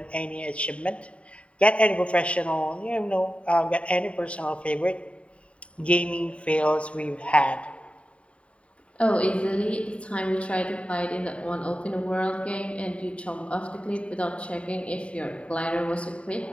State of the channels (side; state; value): right; late; 0.062 ms